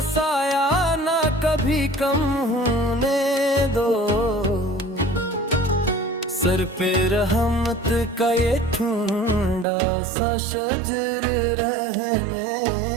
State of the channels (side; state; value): left; drops out; at 9.7 s